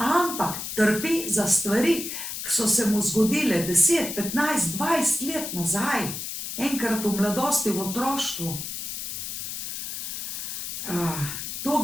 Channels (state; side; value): noise; left; hiss, 6 dB below the sound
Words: trpi za stvari, ki so se mu zgodile 10, 15, 20 let nazaj. Enkrat v mladosti, v otroštvu. To